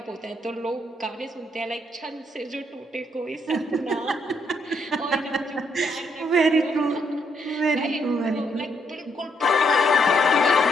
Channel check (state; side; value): normal; both; correlation 0.74